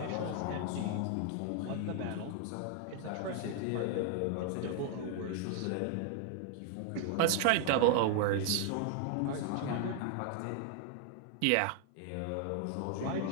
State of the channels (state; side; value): different; both; correlation 0.00